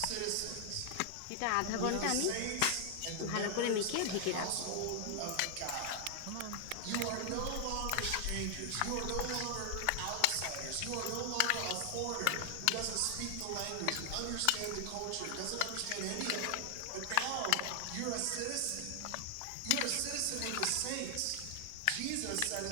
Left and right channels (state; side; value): different; both; correlation 0.00